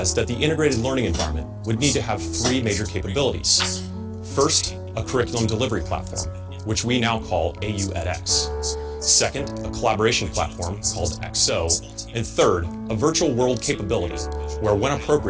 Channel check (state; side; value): identical; both; correlation 1.00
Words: that the integrated learning environment would need to have three major capabilities. First, a curriculum delivery platform, which we now call AU edX. Second, a collaboration platform called XO. And third, a virtual world capability, where when